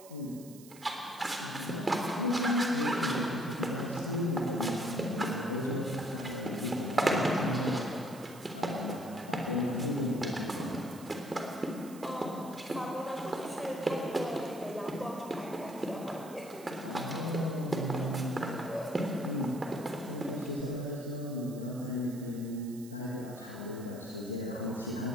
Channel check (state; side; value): noise; right; hiss, 19 dB below the sound